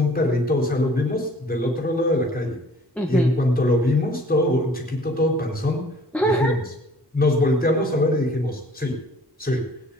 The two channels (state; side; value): normal; both; correlation 0.53